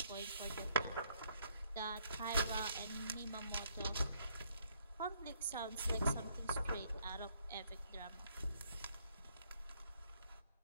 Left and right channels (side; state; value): both; inverted; correlation -0.68